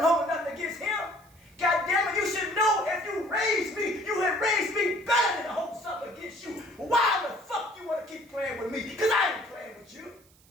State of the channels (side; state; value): right; noise; hiss, 29 dB below the sound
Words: holding nothing against him. God damn it, you should know if you raised me, you had raised me better than to hold something against you. Why the fuck you want to keep playing with me? Because I ain't playing with you.